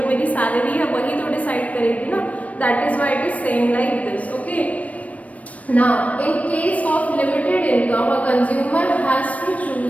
मेरी सैलरी है वही तो डिसाइड करेगी ना. That is why it is saying like this. Okay. Now, in case of limited income, a consumer has to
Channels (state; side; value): late; right; 0.067 ms